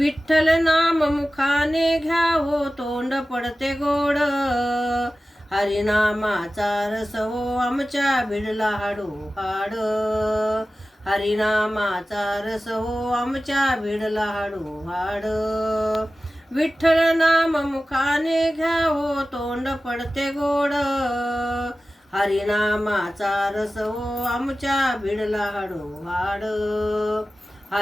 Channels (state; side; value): normal; both; correlation 0.95